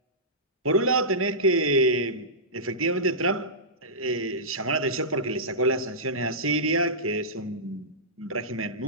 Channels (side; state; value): both; normal; correlation -0.17